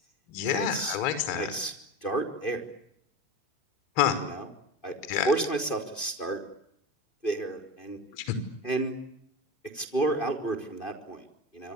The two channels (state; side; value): late; right; 2.5 ms